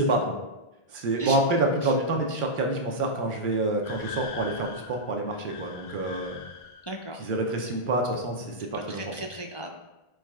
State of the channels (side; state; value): right; late; 1.2 ms